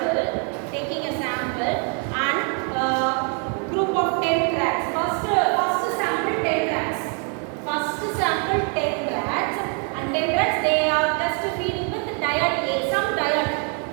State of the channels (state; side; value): quieter; left; 39.5 dB